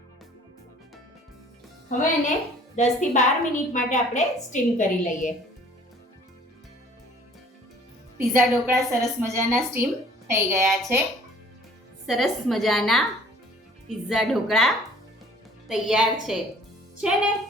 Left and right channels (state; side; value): normal; both; correlation 0.53